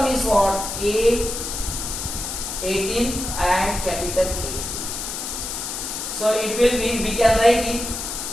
is what? A 18 and capital A. So it will be, we can write it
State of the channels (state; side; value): noise; left; hiss, 5 dB below the sound